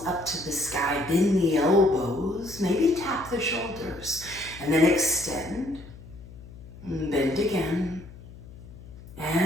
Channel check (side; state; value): left; noise; hum, 17 dB below the sound